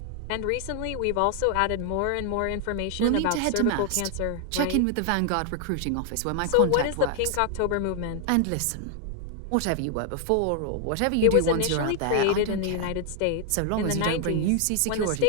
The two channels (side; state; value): both; different; correlation 0.00